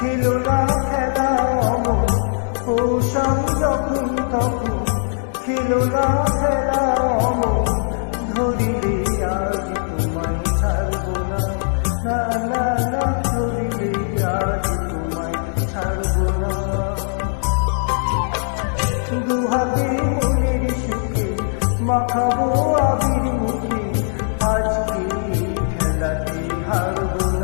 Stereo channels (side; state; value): right; silent; digital silence